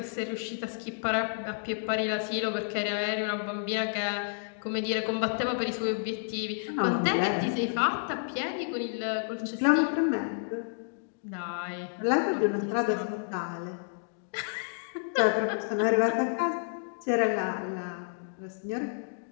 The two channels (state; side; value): silent; right; digital silence